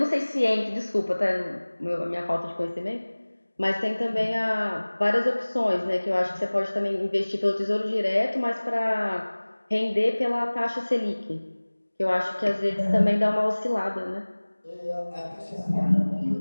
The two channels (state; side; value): inverted; both; correlation -1.00